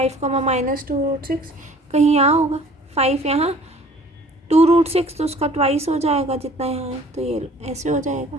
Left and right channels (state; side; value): normal; both; correlation 0.51